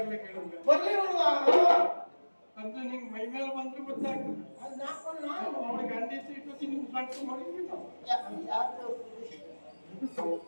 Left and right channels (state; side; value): inverted; both; correlation -1.00